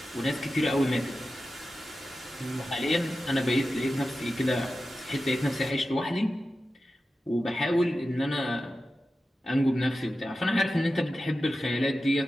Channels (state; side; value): normal; both; correlation 0.93